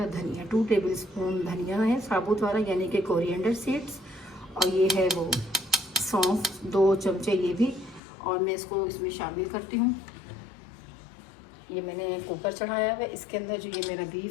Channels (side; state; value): right; drops out; at 8.0 s